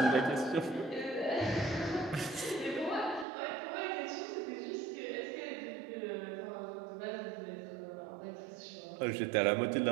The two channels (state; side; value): drops out; left; at 3.2 s